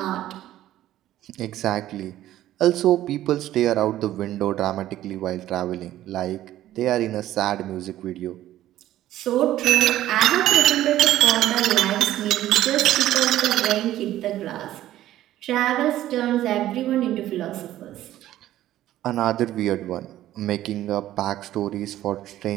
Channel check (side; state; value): left; quieter; 13.6 dB